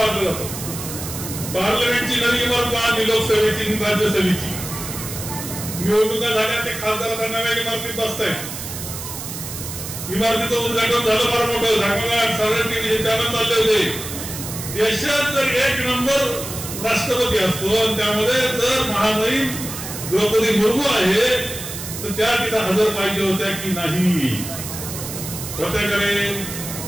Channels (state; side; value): noise; right; hiss, 8 dB below the sound